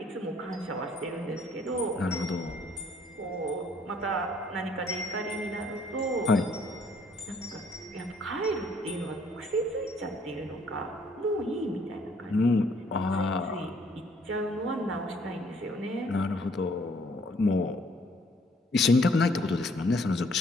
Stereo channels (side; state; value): both; normal; correlation 0.63